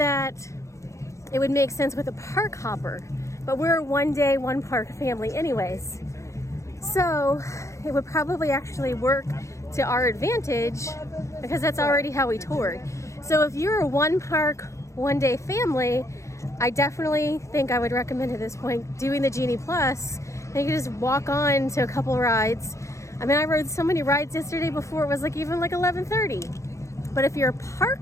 it would make sense with a park hopper. But we're a one day, one park family anyways. So it would probably actually work to our advantage because that's already how we toured. So if you're a one park, one day family, I definitely think I would recommend at this point doing the Genie Plus. And you can just walk on to a couple rides. I mean, I rode so many rides yesterday before it was like even like 11:30. But if you're a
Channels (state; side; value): late; right; 0.15 ms